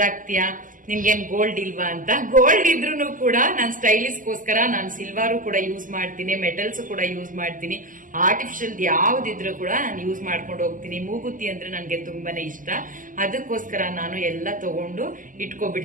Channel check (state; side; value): late; left; 0.39 ms